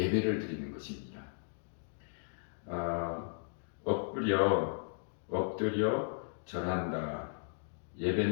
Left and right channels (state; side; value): silent; right; digital silence